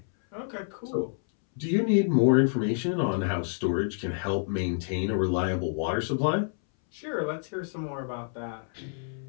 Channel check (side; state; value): right; silent; 59 dB below the other